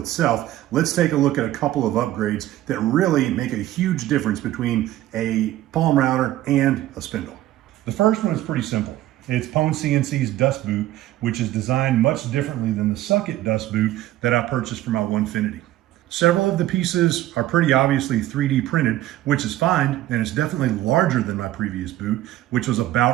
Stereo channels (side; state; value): left; quieter; 14.6 dB